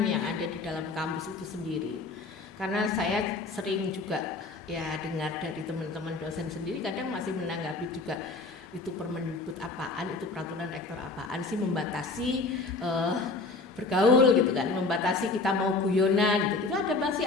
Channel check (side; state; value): right; quieter; 3.6 dB